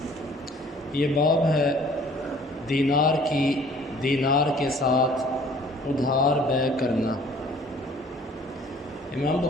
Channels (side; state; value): both; normal; correlation 0.54